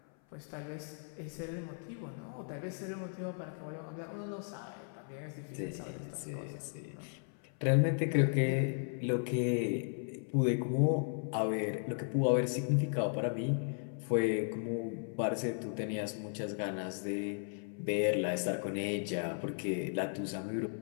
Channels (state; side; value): silent; right; 54 dB below the other